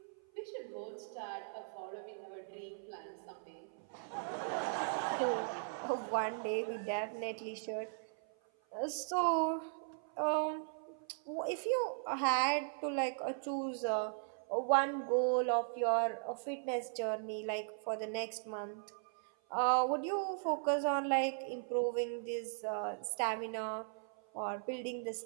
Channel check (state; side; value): silent; left; 52 dB below the other